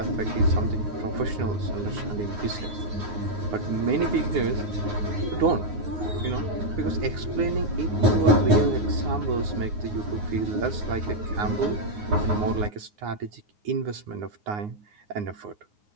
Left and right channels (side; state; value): left; late; 9.6 ms